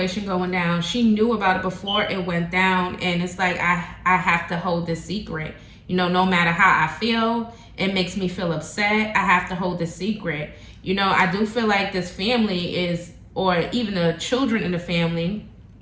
going down. She knew about it before it went down, and it's like I have to hold this secret. You know, no matter how I feel, it makes me feel upset. I have to hold this secret. You know, I do feel like this family is, or even the children in the family,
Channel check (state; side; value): identical; both; correlation 1.00